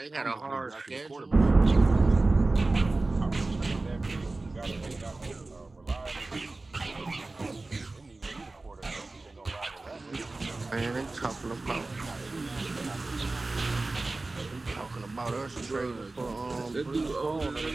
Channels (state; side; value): quieter; left; 3.2 dB